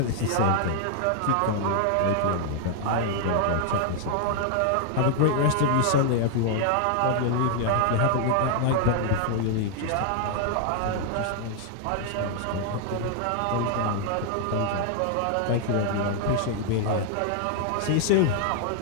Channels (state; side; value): different; both; correlation 0.00